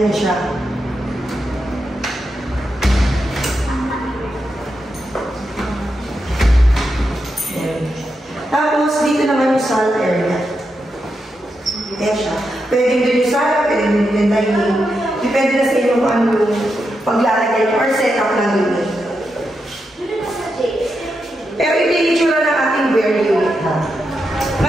siya. Yan. Tapos, dito naman yung salt area. Yan siya. Pwedeng din yung sala, pwedeng din yung dining. Depende na sa inyo kung ano yung paglalagay or setup ng unit. Pero ito yung itsura ng ating bare unit.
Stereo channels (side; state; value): both; normal; correlation 0.86